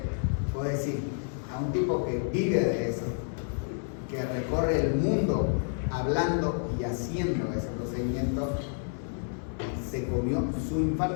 puedo decir, a un tipo que vive de eso, que recorre el mundo hablando y haciendo ese procedimiento, se comió su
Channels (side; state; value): right; silent; 58 dB below the other